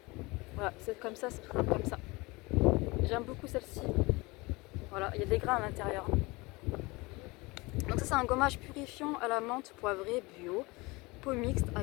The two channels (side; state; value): right; quieter; 24.1 dB